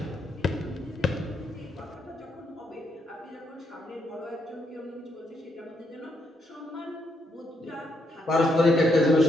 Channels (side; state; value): both; normal; correlation 0.77